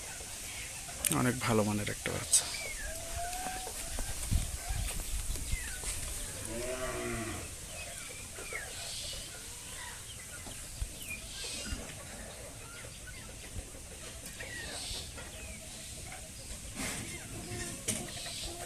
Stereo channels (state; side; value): identical; both; correlation 1.00